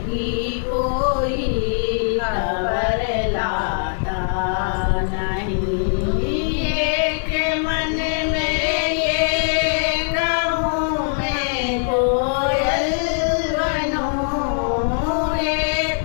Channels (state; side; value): silent; right; digital silence